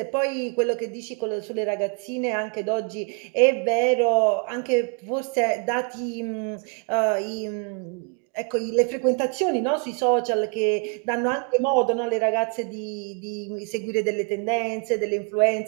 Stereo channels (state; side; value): quieter; left; 36.5 dB